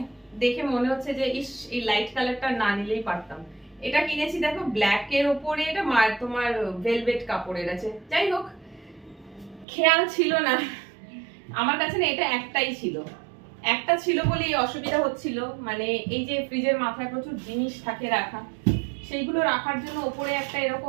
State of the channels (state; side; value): drops out; left; at 9.7 s